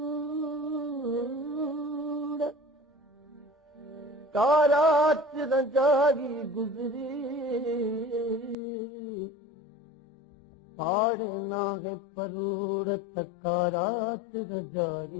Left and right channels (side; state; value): right; drops out; at 8.6 s